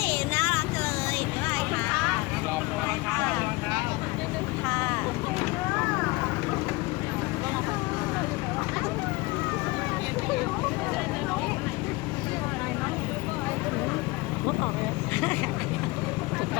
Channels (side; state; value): right; quieter; 22.9 dB